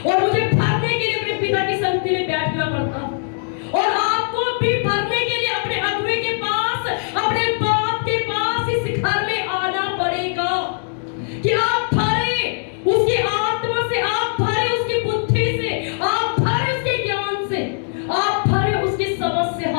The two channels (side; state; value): right; silent; digital silence